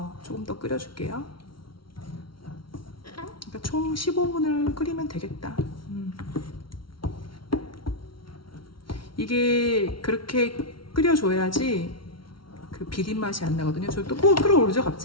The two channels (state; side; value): late; right; 0.74 ms